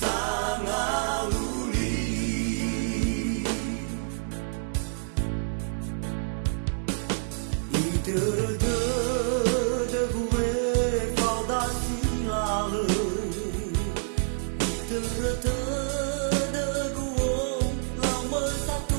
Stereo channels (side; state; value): left; silent; 60 dB below the other